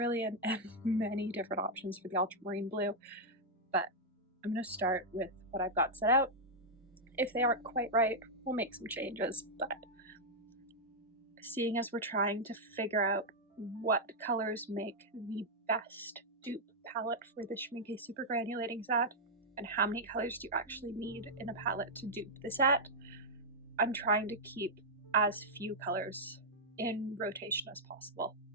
and many different options for the ultramarine blue, but I'm going to start with what I've got set out. If they aren't quite right, we'll make some changes, but seeing as we're trying to figure out what colors make the best dupe palette for the Schmincke super granulating set, and how many colors do you actually need in a palette to dupe the set, I'm trying to keep as few colors in rotation as possible.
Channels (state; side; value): normal; both; correlation -0.05